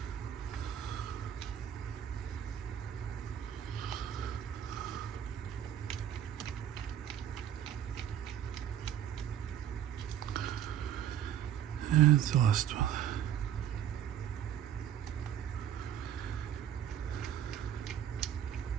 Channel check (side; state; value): left; quieter; 10.2 dB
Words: And the last one.